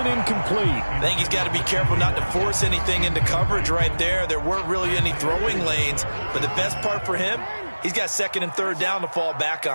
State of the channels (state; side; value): inverted; both; correlation -1.00